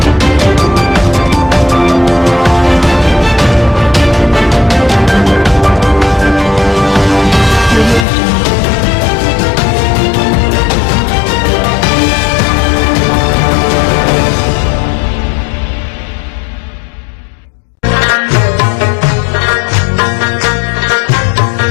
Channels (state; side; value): drops out; right; at 8.1 s